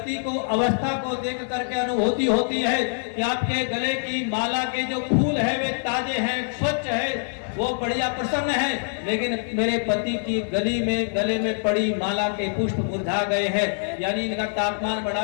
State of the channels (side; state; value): right; silent; 62 dB below the other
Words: को, अवस्था को देख करके अनुभूति होती है कि आपके गले की माला के जो फूल है वे ताजे हैं, स्वच्छ है, वो बढ़िया प्रसन्न है, लेकिन मेरे पति की गले में पड़ी माला के पुष्प मुरझा गए हैं, यानी इनका तापमान